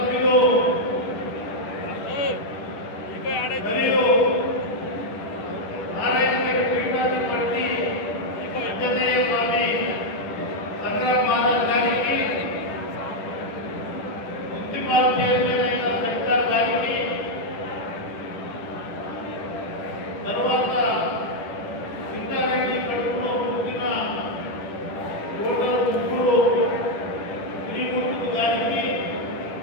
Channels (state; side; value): late; right; 10 ms